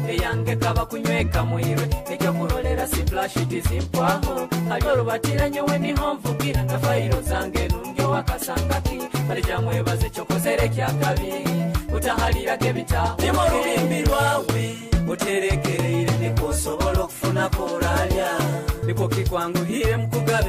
eyange kaba kunyweka mwirwe nekyo kurolera siplashiti zimpwaho alyo lubatiranye weni homvugira na fairo zange nungyo wakasangaki balijamwebaze kyokozere kyakabi utahalirage bitaho nimo lubimbi lwawe uterekereire nikusobola okufuna koralya niko kikwanguhire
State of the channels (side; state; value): both; identical; correlation 1.00